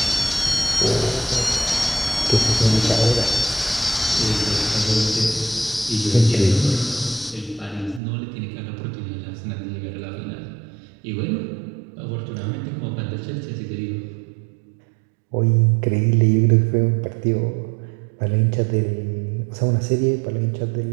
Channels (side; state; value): left; drops out; at 8.0 s